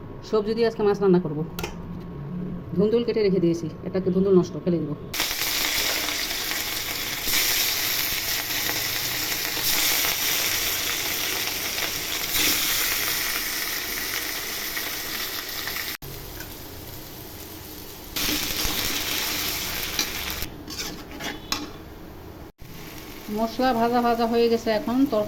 সবজি দিয়ে আজকে মাছ রান্না করব। ধুন্দুল কেটে রেখে দিয়েছি, এটাকে ধুন্দুল নষ্ট ফেলে দেবো। মশলা ভাজা ভাজা হয়ে গেছে, এখন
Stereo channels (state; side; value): identical; both; correlation 1.00